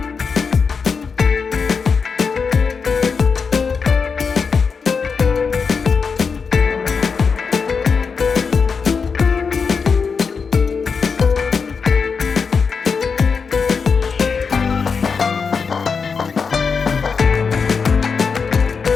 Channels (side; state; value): right; quieter; 5.5 dB